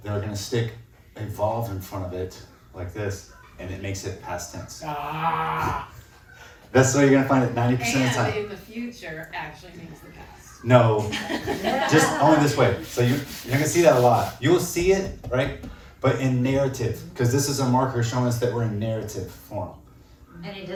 they're gonna stick evolve in front of it like this, and it makes it past tense. Ah. That's what you're gonna find it 90% of the And time. in the future actually means the past. No, just only this way. So you're gonna see that a lot. You will see it, right? But in narrative, because this is a marker showing us that we're in narrative form. And it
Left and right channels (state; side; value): identical; both; correlation 1.00